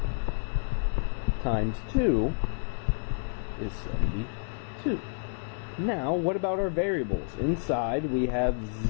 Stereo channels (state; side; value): silent; right; 58 dB below the other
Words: times 2 is 72. Now, what about our variables? Inside, we have